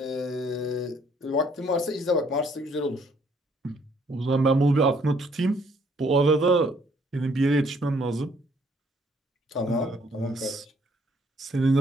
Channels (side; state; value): both; normal; correlation 0.65